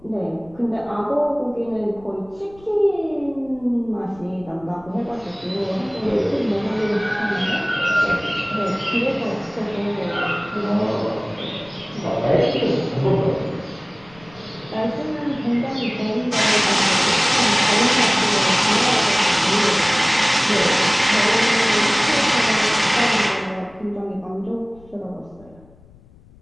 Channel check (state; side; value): noise; left; rumble, 26 dB below the sound